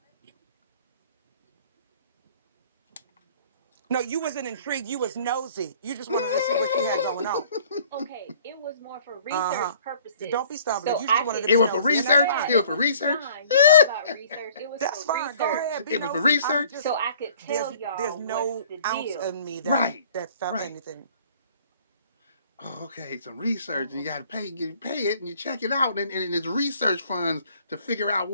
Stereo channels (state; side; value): inverted; both; correlation -0.53